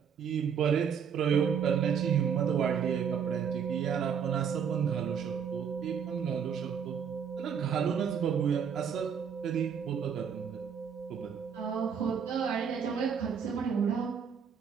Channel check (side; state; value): left; quieter; 7.3 dB